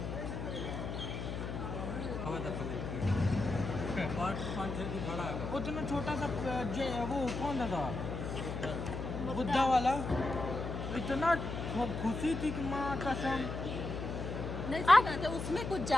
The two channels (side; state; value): left; noise; hum, 5 dB below the sound